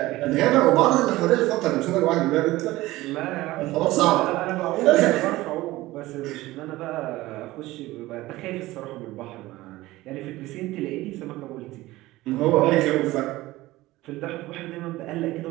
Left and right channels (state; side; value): quieter; left; 18.1 dB